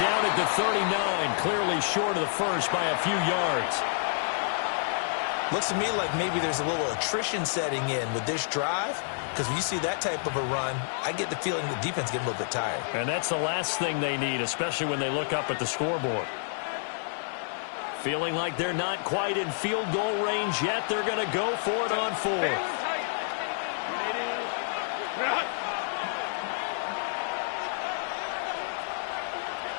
down at the 39, clearly short of the first by a few yards. Looks to me like maybe there's a little attrition setting in with this drive, because when you see that type of a run, I get the feeling the defense getting a little bit tired. And that's the last thing they need, especially when they look up at the scoreboard. Feeling like they're not quite in field goal range yet. They're going to go for it on 4th.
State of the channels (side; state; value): right; silent; digital silence